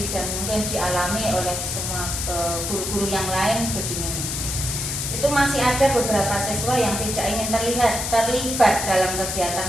dan mungkin dialami oleh semua guru-guru yang lain begini. Itu masih ada beberapa siswa yang tidak ingin terlibat dalam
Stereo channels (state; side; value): noise; left; hiss, 3 dB below the sound